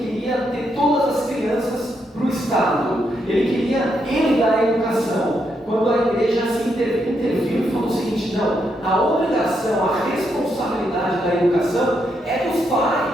ter todas as crianças para o Estado. Ele queria ele dar a educação. Quando a igreja se interviu e falou o seguinte: não, a obrigação, a responsabilidade da educação é dos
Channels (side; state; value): both; normal; correlation 0.79